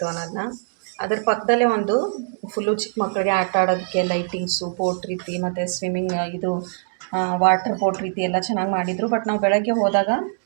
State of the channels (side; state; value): left; silent; digital silence